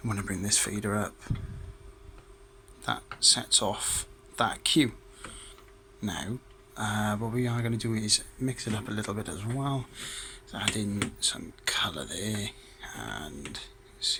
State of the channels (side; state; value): both; identical; correlation 1.00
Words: I'm going to bring this fader up. That sets off that Q. Now, what we are going to do is mix it up a little bit as well. So add in some colour there, and